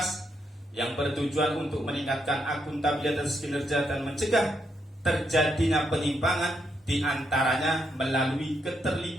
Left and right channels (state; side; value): normal; both; correlation 0.79